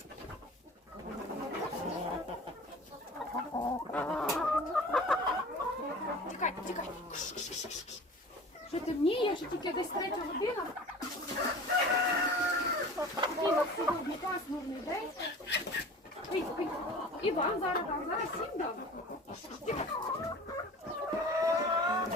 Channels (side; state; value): both; normal; correlation 0.40